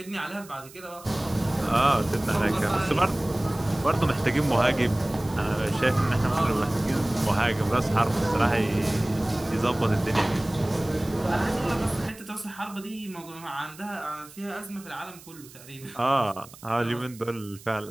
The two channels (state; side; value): noise; right; hiss, 20 dB below the sound